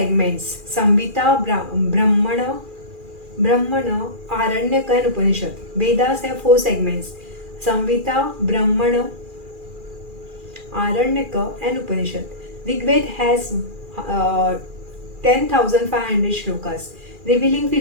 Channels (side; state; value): left; late; 2.4 ms